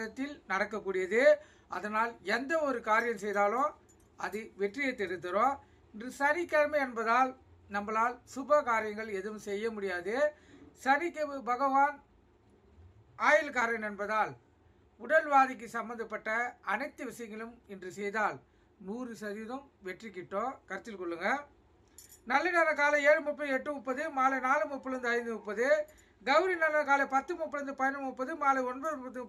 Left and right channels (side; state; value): both; identical; correlation 1.00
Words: நடக்கக்கூடியது. அதனால் எந்த ஒரு காரியம் செய்தாலும் அது வெற்றியை தரும். இன்று சனிக்கிழமை என்பதால் நம்மளால் சுப காரியங்கள் எதுவும் செய்ய முடியாது. சனிக்கு பகவான் ஆயுள்காரன் என்பதால் உடல்வாதிக்கு சம்பந்தப்பட்ட அனைத்து விஷயங்களும் இன்று செய்தால் 100% வெற்றி கிட்டும். கருத்தில் கொள்ளுங்க. நல்ல நேரம் காலை 7:30, 8:30, மாலை 4:30, 5:30. கௌரி நல்ல காலை 10:30, 11:30, மாலை 9:30,